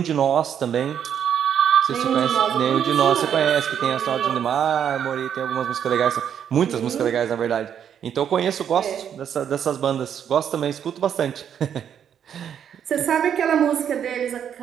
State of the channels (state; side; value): quieter; left; 8.7 dB